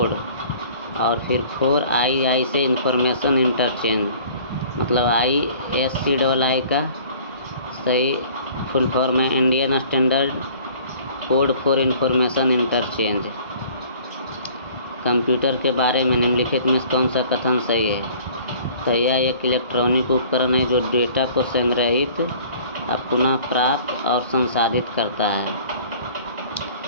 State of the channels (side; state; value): both; inverted; correlation -0.51